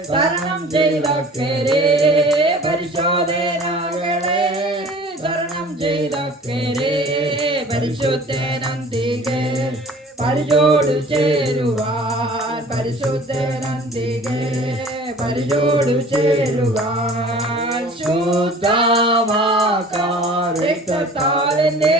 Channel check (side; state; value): both; normal; correlation 0.46